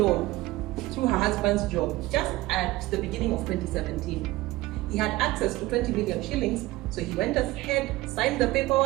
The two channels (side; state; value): left; quieter; 18.5 dB